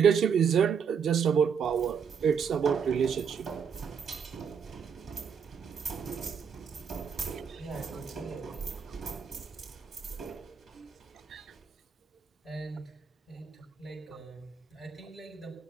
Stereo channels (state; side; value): quieter; left; 6.8 dB